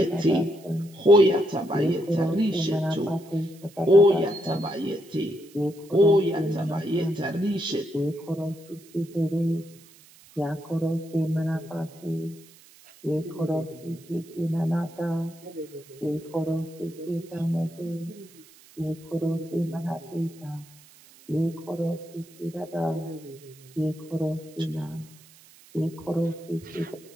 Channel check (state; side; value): noise; right; hiss, 24 dB below the sound